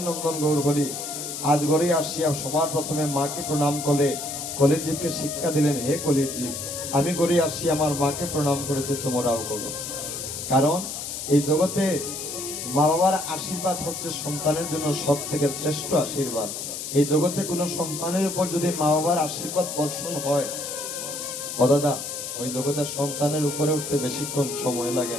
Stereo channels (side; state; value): left; noise; hiss, 6 dB below the sound